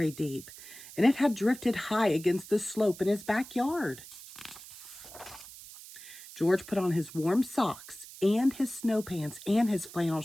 deep, and it had drifted high against the slope in his backyard. George put on his warm socks and his snow pants and his flannel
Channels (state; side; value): noise; right; hiss, 16 dB below the sound